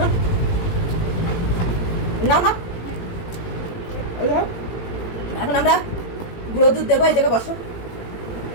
না না। এখন আমরা গুঁড়ো দুধ দেবো, এই জায়গায় বসো।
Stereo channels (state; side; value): late; right; 18 ms